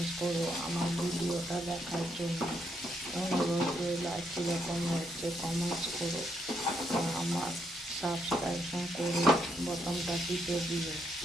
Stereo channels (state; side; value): normal; both; correlation 0.77